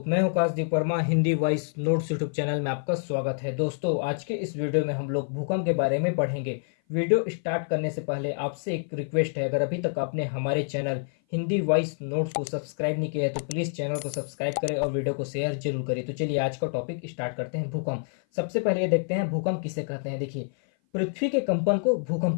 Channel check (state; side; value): silent; right; 56 dB below the other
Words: मैं हूं Kashdeep Verma. Hindi voice notes YouTube channel में आपका स्वागत है। दोस्तों, आज के इस वीडियो में हम लोग भूकंप के बारे में पढ़ेंगे। वीडियो स्टार्ट करने से पहले आपसे एक रिक्वेस्ट है, अगर अभी तक आपने हमारे चैनल हिंदी वॉइस नोट्स को सब्सक्राइब नहीं किया है तो प्लीज़ चैनल को सब्सक्राइब करें और वीडियो को शेयर जरूर करें। तो चलिए आज का टॉपिक स्टार्ट करते हैं। भूकंप। सबसे पहले ये देखते हैं भूकंप किसे कहते हैं। देखिए, पृथ्वी के कंपन को भूकंप